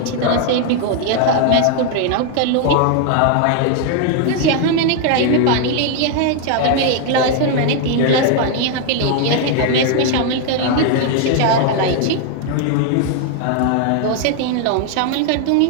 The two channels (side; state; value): both; different; correlation 0.00